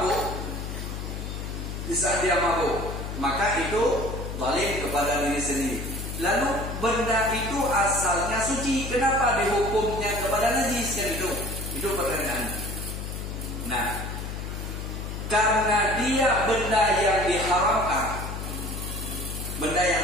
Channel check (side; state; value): left; noise; hum, 6 dB below the sound